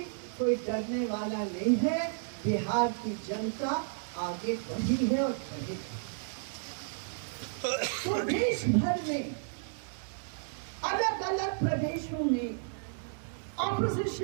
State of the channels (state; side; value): silent; left; digital silence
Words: कोई डरने वाला नहीं है। बिहार की जनता आगे बढ़ी है और बढ़ेगी। तो देश भर में अलग अलग प्रदेशों में